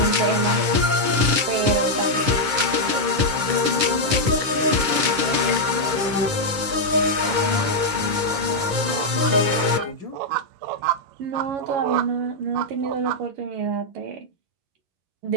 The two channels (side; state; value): left; late; 10 ms